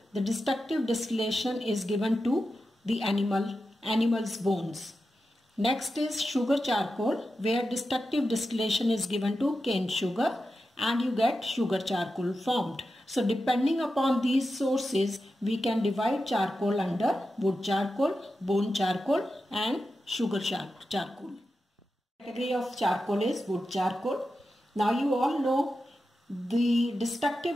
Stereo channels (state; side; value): normal; both; correlation 0.90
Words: the destructive distillation is given to the animal's bones. Next is sugar charcoal, where destructive distillation is given to cane sugar and you get sugar charcoal formed. So depending upon these sources, we can divide charcoal under wood charcoal, bone charcoal and sugar charcoal. The category of charcoal is wood charcoal. Now you all know the